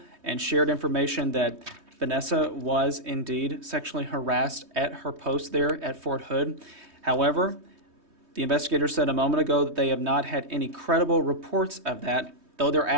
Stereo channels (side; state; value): left; late; 3.2 ms